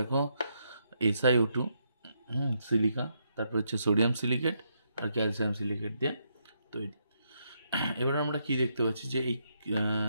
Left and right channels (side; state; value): both; inverted; correlation -0.78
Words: SiO2, সিলিকা, তারপর হচ্ছে সোডিয়াম সিলিকেট আর ক্যালসিয়াম সিলিকেট দিয়ে তৈরি। এবার আমরা কি দেখতে পাচ্ছি যে এই